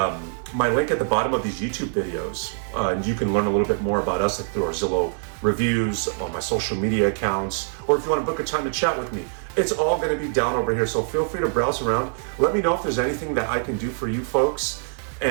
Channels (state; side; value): silent; left; digital silence